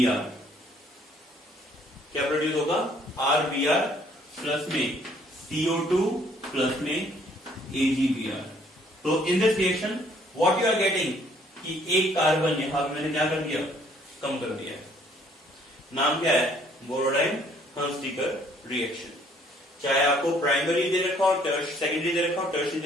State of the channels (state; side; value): normal; both; correlation 0.62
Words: आर, क्या प्रोड्यूस होगा, आर बी आर प्लस में CO2 प्लस में AgBr। तो in this reaction what you are getting कि एक कार्बन यहां मैंने क्या कर दिया, कम कर दिया है। नाम क्या है, बोरोडाइन हंसडीकर रिएक्शन। चाहे आपको प्राइमरी दे रखा हो, सेकेंडरी दे रखा हो, टर्शियरी